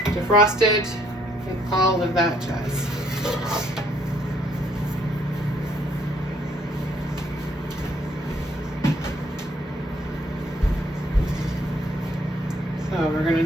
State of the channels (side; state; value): both; normal; correlation 0.67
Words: defrosted, and all of that jazz. So we're gonna